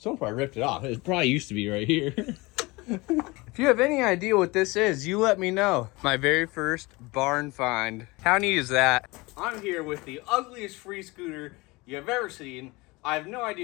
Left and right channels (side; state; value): right; quieter; 23.5 dB